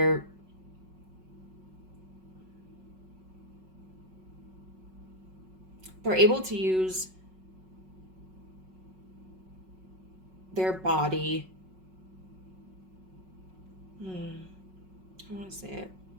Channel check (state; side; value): late; left; 5.4 ms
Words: able to use their body. I want to say it.